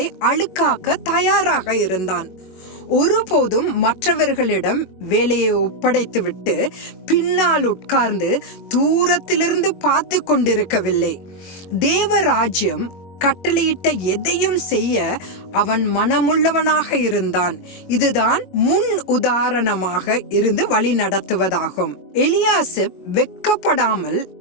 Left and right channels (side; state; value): right; late; 21 ms